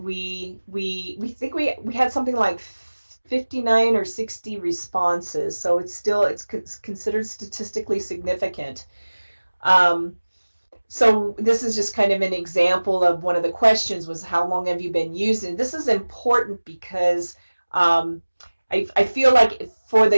think we had something like 59 or 60 responses, so it's considered statistically significant. So this is just kind of an example of one of the questions was, how long have you been using? This is important because I feel like for the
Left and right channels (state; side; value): inverted; both; correlation -1.00